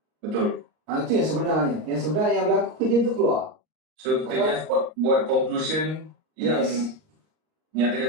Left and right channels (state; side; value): late; left; 38 ms